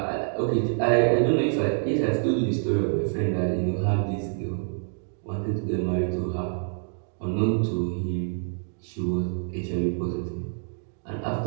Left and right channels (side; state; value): left; silent; 60 dB below the other